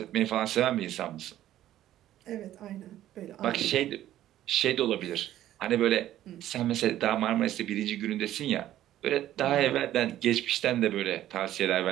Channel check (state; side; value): quieter; left; 13.0 dB